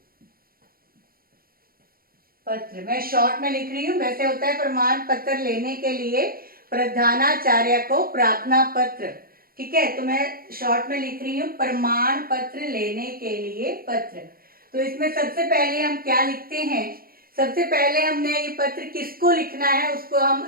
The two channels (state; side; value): late; left; 0.43 ms